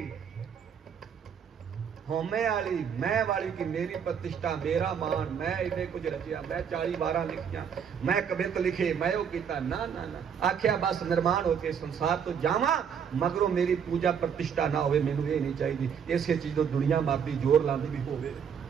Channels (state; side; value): quieter; left; 7.5 dB